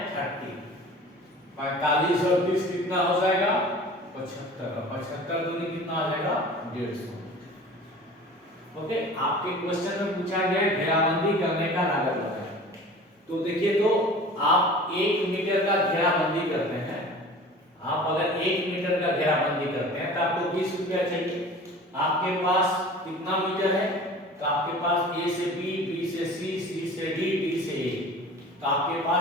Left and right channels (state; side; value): normal; both; correlation 0.41